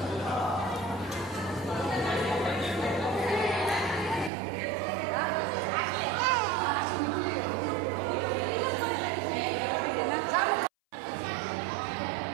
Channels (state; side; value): drops out; left; at 4.3 s